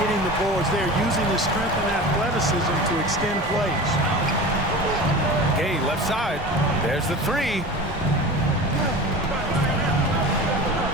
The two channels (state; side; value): normal; both; correlation 0.33